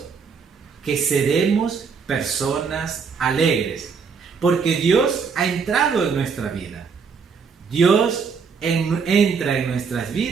que seremos personas alegres, porque Dios ha entrado en nuestra vida. Dios entra en nuestras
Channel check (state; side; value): quieter; left; 5.7 dB